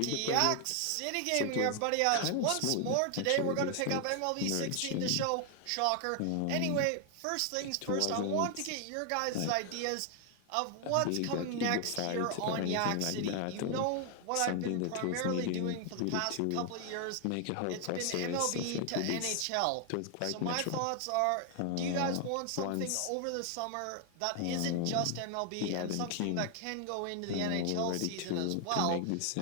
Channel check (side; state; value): both; different; correlation 0.00